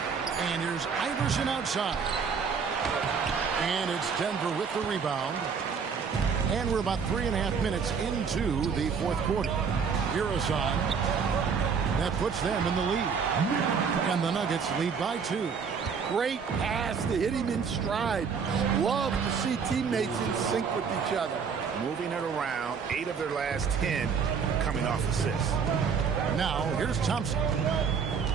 And here's Iverson outside. And it's Denver with the rebound. And we're about 3.5 minutes into the fourth quarter. Iverson. That puts them in the lead. And the Nuggets lead by 2. Great pass to hit him in stride. Love to see teammates in sync with each other. Moving it around, 8 of their last 10 coming off assists. Now, here's Thompson.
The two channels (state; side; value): quieter; left; 6.1 dB